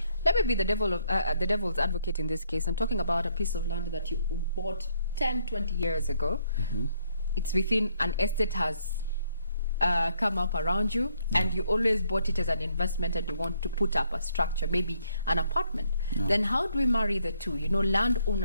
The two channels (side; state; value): both; inverted; correlation -0.70